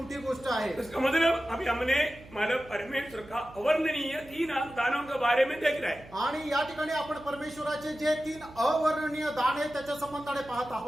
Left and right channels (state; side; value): noise; right; hum, 20 dB below the sound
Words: गोष्ट आहे. इसका मतलब अभी हमने मतलब परमेश्वर का अवर्णनीय 3 दानों के बारे में देख रहे हैं. आणि या ठिकाणी आपण परमेश्वराचे जे 3 अवर्णनीय दान आहे त्याच्या संबंधाने पाहत